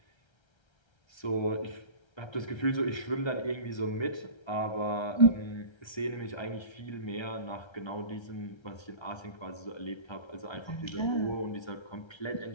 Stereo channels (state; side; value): late; right; 1.3 ms